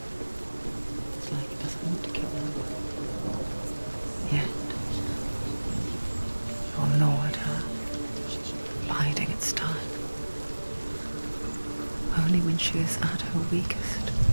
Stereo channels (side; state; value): both; inverted; correlation -1.00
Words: It's like it doesn't want to kill her. Yet, it will gnaw at her, biding its time. Only when she is at her weakest